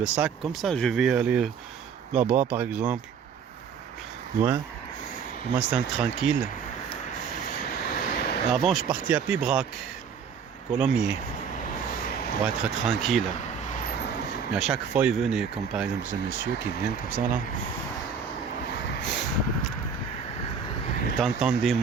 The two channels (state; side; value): quieter; left; 6.5 dB